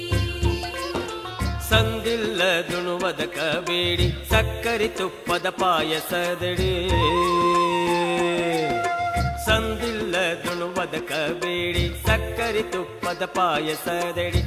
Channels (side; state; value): both; identical; correlation 1.00